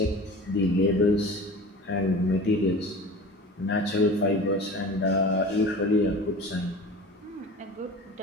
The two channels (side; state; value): both; normal; correlation 0.38